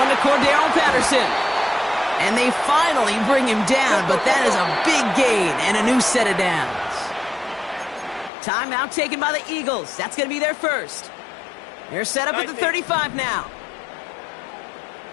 to Cordero Patterson. And they finally bring him down, but that is a big gain and a new set of downs. Timeout taken by the Eagles. That's going to be their first. They're set up at the 35 now.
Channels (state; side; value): drops out; right; at 8.3 s